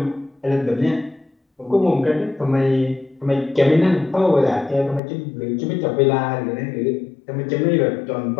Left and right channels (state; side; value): drops out; right; at 5.0 s